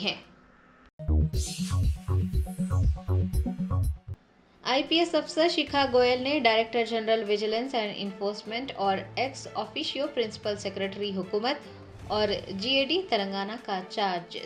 आईपीएस अफसर शिखा गोयल ने director general vigilance and enforcement और एक्स ऑफिशियो प्रिंसिपल सेक्रेटरी हुकूमत और जीएडी तेलंगाना का चार्ज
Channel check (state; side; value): identical; both; correlation 1.00